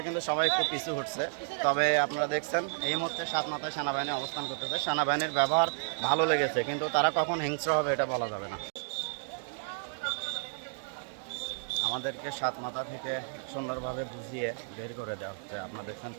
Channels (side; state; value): left; silent; digital silence